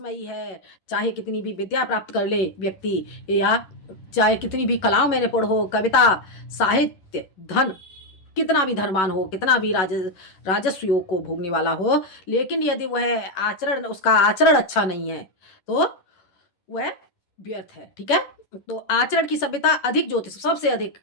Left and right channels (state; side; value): late; right; 11 ms